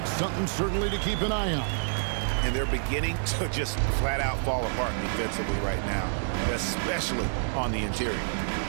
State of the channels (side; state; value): left; silent; digital silence